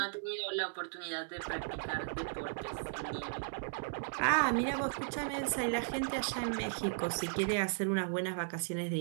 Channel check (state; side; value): silent; left; digital silence